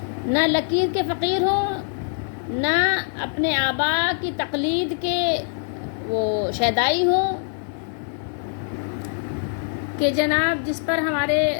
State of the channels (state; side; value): silent; right; digital silence